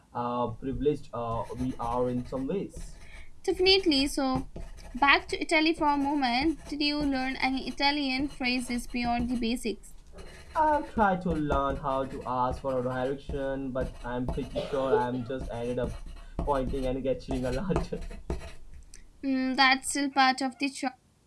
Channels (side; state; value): both; identical; correlation 1.00